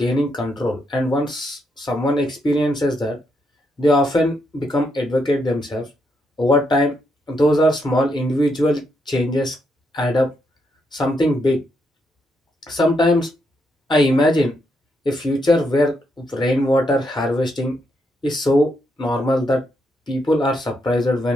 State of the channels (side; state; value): both; normal; correlation 0.79